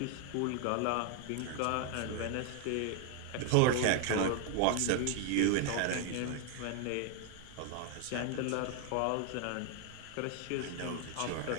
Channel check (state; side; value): different; both; correlation 0.00